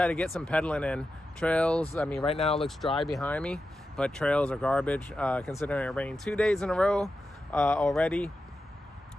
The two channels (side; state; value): both; normal; correlation 0.90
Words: to get some pedaling in. Trails, I mean, right now it looks dry behind me, but trails are garbage, considering it rained 2 days in a row already.